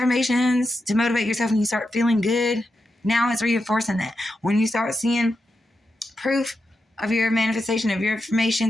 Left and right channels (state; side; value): normal; both; correlation 0.87